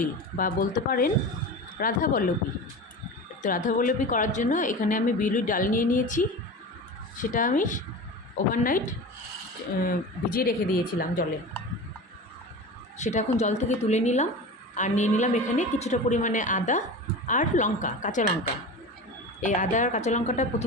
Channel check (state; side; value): normal; both; correlation 0.31